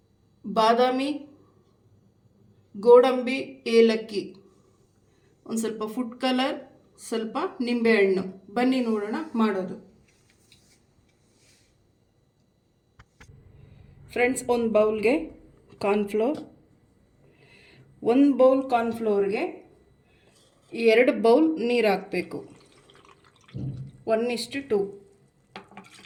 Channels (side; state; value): both; identical; correlation 1.00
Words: ಬಾದಾಮಿ, ಗೋಡಂಬಿ, ಏಲಕ್ಕಿ, ಒಂದು ಸ್ವಲ್ಪ ಫುಡ್ ಕಲರ್, ಸ್ವಲ್ಪ ನಿಂಬೆಹಣ್ಣು. ಬನ್ನಿ ನೋಡೋಣ ಮಾಡೋದು. ಫ್ರೆಂಡ್ಸ್, ಒಂದು ಬೌಲ್ಗೆ ಕಾರ್ನ್ಫ್ಲೋರ್, 1 ಬೌಲ್ ಕಾರ್ನ್ಫ್ಲೋರ್ಗೆ 2 ಬೌಲ್ ನೀರು ಹಾಕಬೇಕು. 1:2.